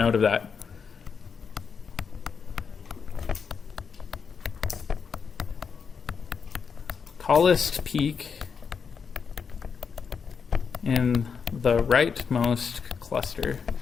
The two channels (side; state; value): right; quieter; 6.1 dB